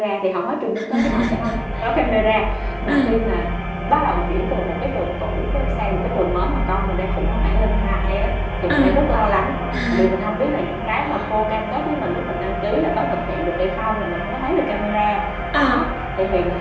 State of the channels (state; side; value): identical; both; correlation 1.00